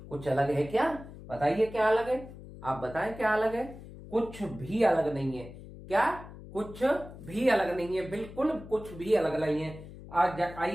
कुछ अलग है क्या, बताइए क्या अलग है, आप बताएं क्या अलग है। कुछ भी अलग नहीं है। क्या, कुछ भी अलग नहीं है, बिल्कुल कुछ भी अलग नहीं है।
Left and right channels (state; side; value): noise; left; hum, 15 dB below the sound